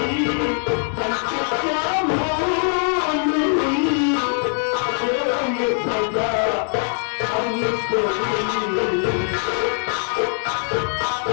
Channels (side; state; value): right; silent; 60 dB below the other